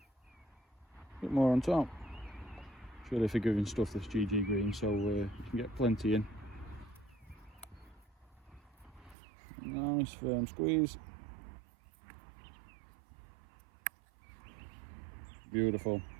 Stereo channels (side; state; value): left; drops out; at 9.2 s